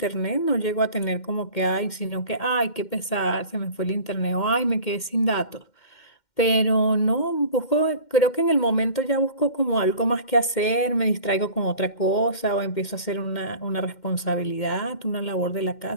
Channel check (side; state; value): right; late; 2.1 ms